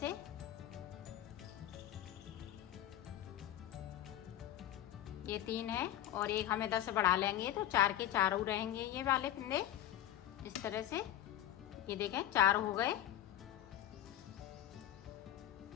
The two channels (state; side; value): quieter; right; 12.5 dB